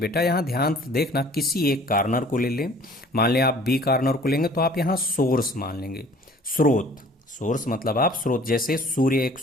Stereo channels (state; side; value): normal; both; correlation 0.52